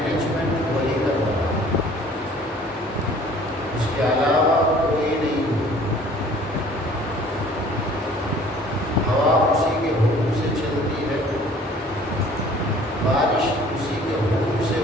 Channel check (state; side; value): normal; both; correlation 0.52